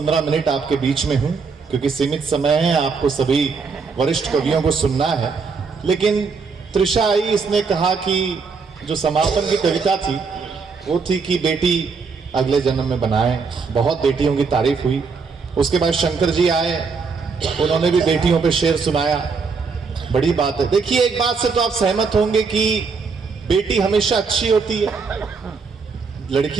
मिनट आपके बीच में हूँ क्योंकि सीमित समय है, आपको सभी वरिष्ठ कवियों को सुनना है। लेकिन त्रिशा आई, इसने कहा कि जो समापन की कविता थी वो थी कि बेटी अगले जन्म में बनाए। बहुत बेटियों की तारीफ हुई। उसके बाद शंकर जी आए, उन्होंने भी बेटियों पे शेर सुनाया। बड़ी बात है। देखिए, एक बात से तो आप सहमत होंगे कि बेटी हमेशा अच्छी होती है।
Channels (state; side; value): quieter; left; 5.0 dB